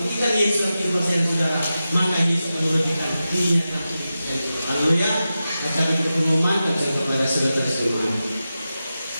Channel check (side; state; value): both; inverted; correlation -0.92